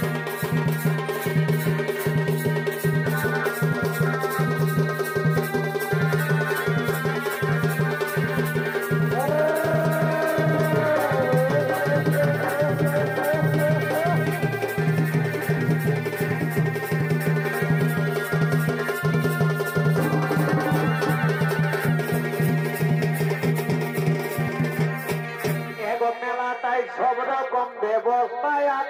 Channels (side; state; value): both; identical; correlation 1.00